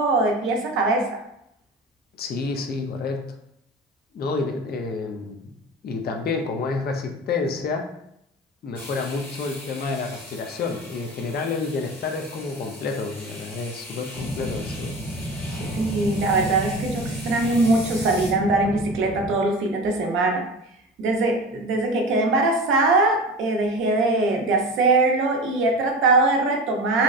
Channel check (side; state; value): both; normal; correlation 0.31